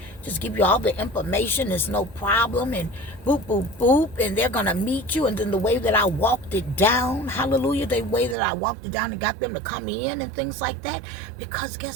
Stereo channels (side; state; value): left; drops out; at 8.3 s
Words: just give you all the information. There's no problem, and boop, boop, boop, and they're going to meet you. And then the way that I walked it down, hallelujah, the way that I walked it down and got them to come in and things like that. Because